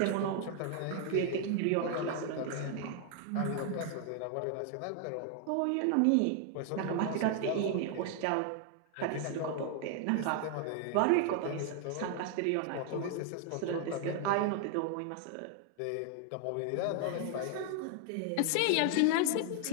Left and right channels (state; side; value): different; both; correlation 0.00